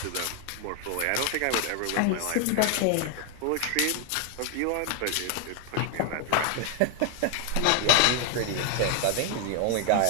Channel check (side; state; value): both; different; correlation 0.00